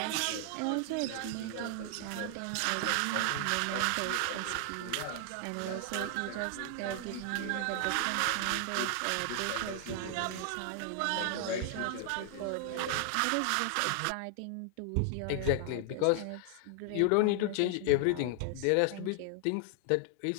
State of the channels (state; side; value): different; both; correlation 0.00